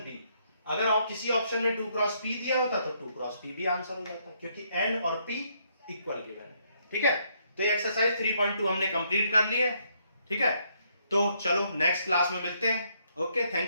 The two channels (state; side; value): inverted; both; correlation -0.72